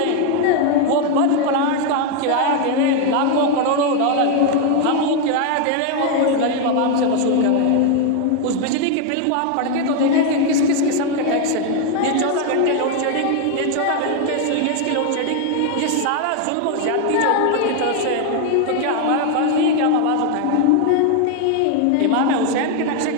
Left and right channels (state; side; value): different; both; correlation 0.01